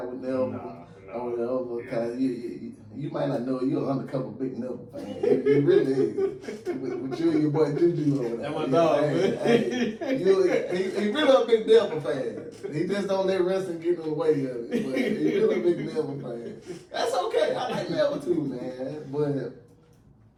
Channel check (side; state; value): both; identical; correlation 1.00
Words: with Neville. Or whatever. Because you might not know you're an undercover big Neville fan. You really is. With you and your boy Juju over there. That's my dog, man. He really a big Neville fan. He just don't let wrestling get in the way of it. But he really a big Neville fan. That's okay. I like Neville too, man.